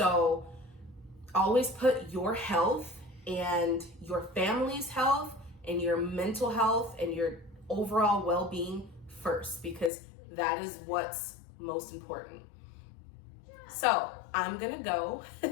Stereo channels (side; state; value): right; drops out; at 9.9 s